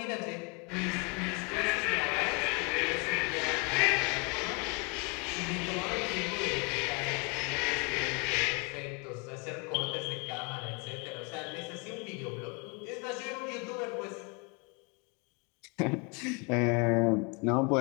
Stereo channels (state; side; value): quieter; right; 31.3 dB